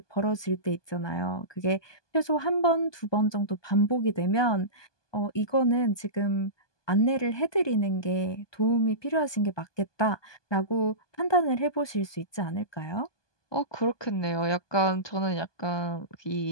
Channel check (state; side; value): late; right; 1.2 ms